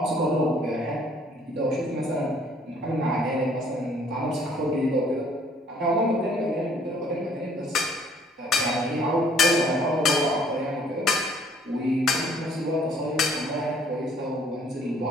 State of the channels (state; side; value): normal; both; correlation 0.59